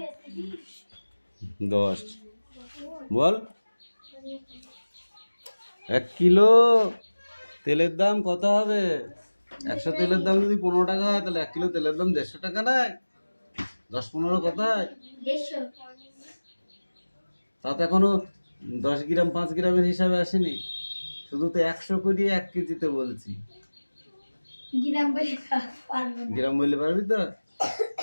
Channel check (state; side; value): inverted; both; correlation -1.00